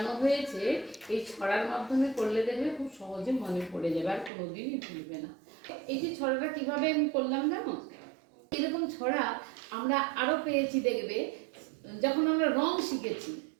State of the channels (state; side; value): drops out; left; at 4.3 s